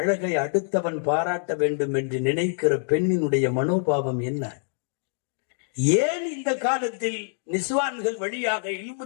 அடுத்தவன் பாராட்ட வேண்டும் என்று நினைக்கிற பெண்ணினுடைய மனோபாவம் என்ன? ஏன் இந்த காலத்தில் நிஸ்வான்கள் வழியாக இல்மு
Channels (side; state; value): right; silent; digital silence